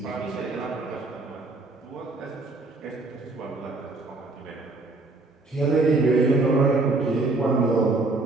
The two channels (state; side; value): quieter; left; 3.3 dB